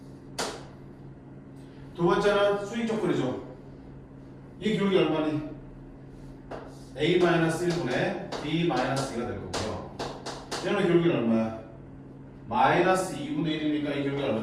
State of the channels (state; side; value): identical; both; correlation 1.00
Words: 두 번째는 수익 조건이죠. 이 기울기 얼마니? a-1분의 b-2가 될 거고요. 얘는 기울기는 얼마야? 마이너스 2분의 1이니까 이 기울기가